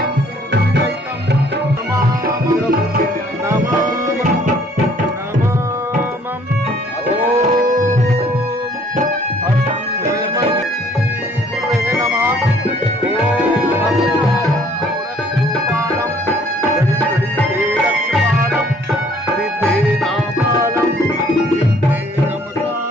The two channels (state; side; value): normal; both; correlation 0.60